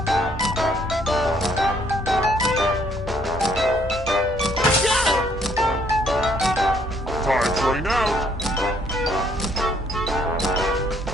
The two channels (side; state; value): both; normal; correlation 0.66